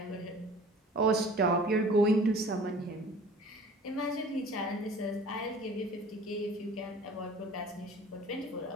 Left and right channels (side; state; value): both; normal; correlation 0.47